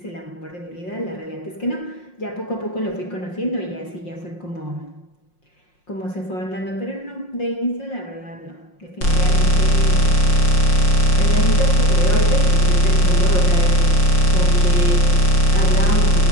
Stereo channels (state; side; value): late; right; 5.6 ms